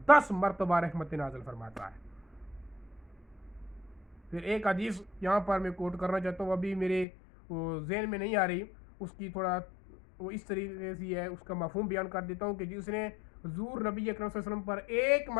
10 مرتبہ رحمت نازل فرماتا ہے. پھر ایک حدیث یہاں پر میں کوٹ کرنا چاہتا ہوں, ابھی میرے ذہن میں نہیں آ رہی, اس کی تھوڑا وہ اس طریقے سے ہے, اس کا مفہوم بیان کر دیتا ہوں کہ جس نے حضور نبی اکرم صلی اللہ علیہ وسلم پر ایک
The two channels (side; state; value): right; drops out; at 7.1 s